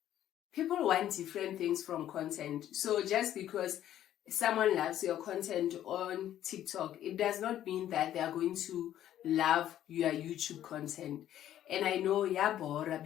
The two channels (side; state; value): right; quieter; 11.8 dB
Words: people want different things from content. So just because someone loves your content on TikTok, it does not mean that they are going to love your YouTube content. And I know, Bora,